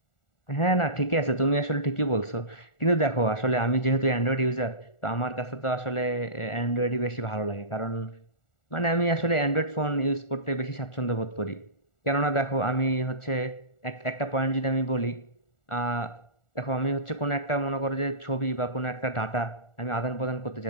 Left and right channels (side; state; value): right; late; 1.4 ms